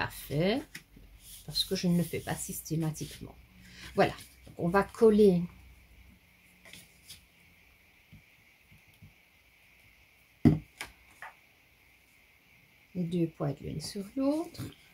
fait, parce que je ne le fais pas systématiquement. Voilà, on va coller les deux pointes l'une sur l'autre.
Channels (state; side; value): identical; both; correlation 1.00